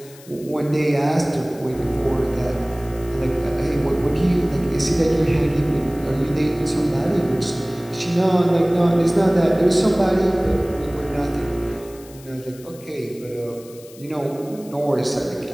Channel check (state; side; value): noise; left; hiss, 22 dB below the sound